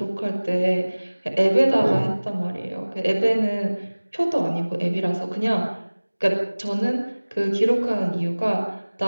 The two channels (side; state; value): both; inverted; correlation -1.00